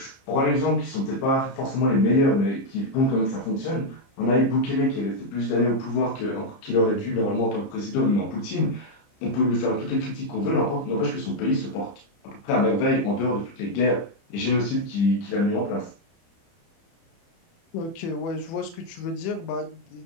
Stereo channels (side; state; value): right; late; 30 ms